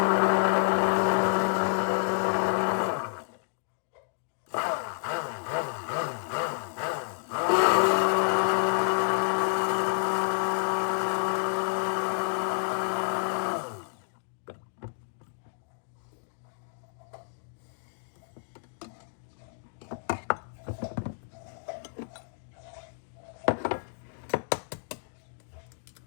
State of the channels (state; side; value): silent; right; digital silence